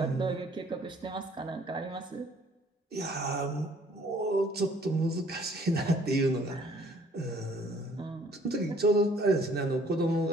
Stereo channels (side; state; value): both; normal; correlation 0.59